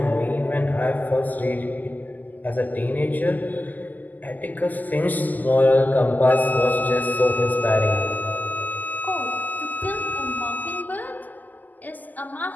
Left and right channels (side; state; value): right; late; 0.083 ms